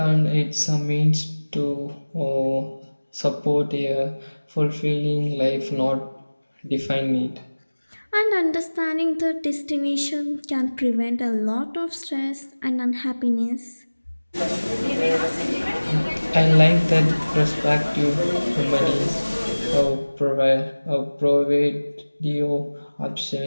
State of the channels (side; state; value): both; inverted; correlation -1.00